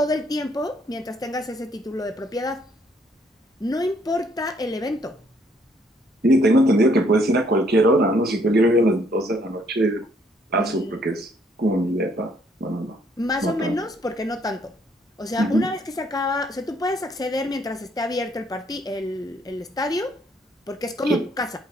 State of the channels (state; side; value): normal; both; correlation 0.67